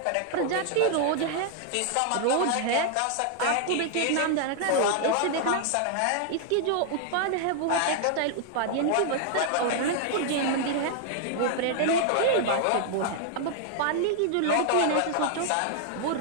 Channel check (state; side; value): different; both; correlation 0.00